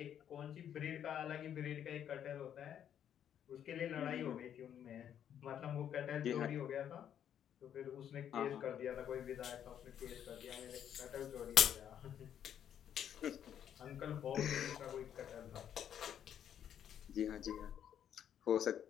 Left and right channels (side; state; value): right; quieter; 9.5 dB